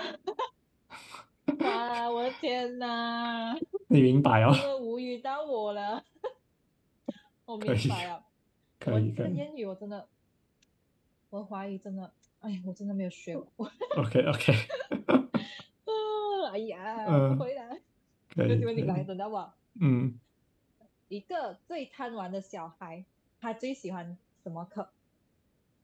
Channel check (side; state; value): both; identical; correlation 1.00